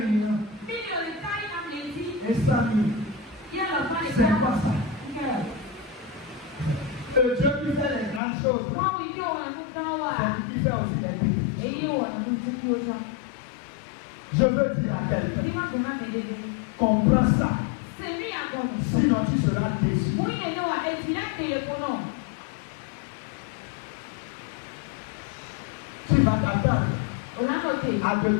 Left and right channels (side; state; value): right; drops out; at 8.2 s